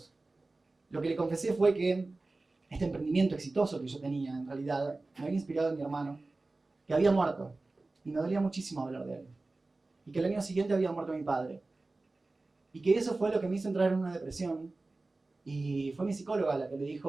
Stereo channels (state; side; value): quieter; left; 3.3 dB